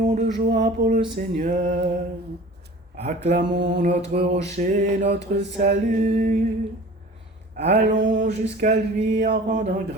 de joie pour le Seigneur, acclamons notre rocher, notre salut. Allons jusqu'à lui en rendant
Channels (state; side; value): normal; both; correlation 0.43